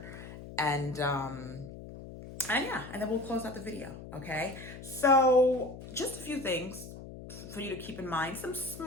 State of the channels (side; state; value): left; noise; hum, 13 dB below the sound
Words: and yeah, and then we'll close out the video. Okay, so just a few things for you to keep in mind, some